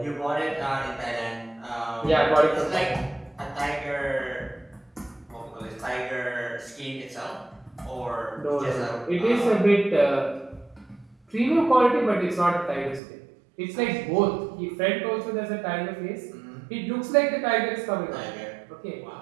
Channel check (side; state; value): left; drops out; at 13.0 s